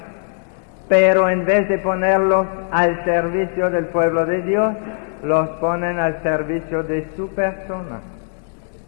pero en vez de ponerlos al servicio del pueblo de Dios, los ponen al servicio de su persona.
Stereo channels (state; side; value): silent; right; digital silence